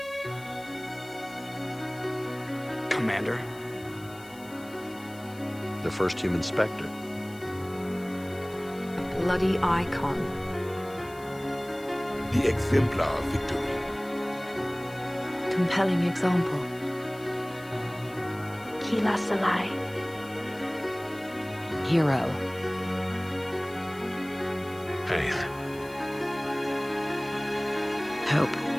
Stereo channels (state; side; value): noise; left; hiss, 22 dB below the sound